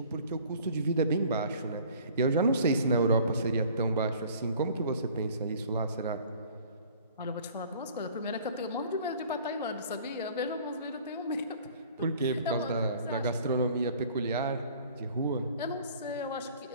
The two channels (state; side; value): inverted; both; correlation -0.51